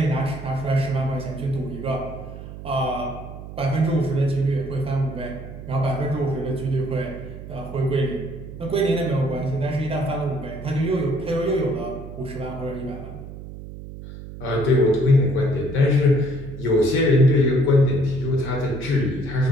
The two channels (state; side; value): noise; right; hum, 12 dB below the sound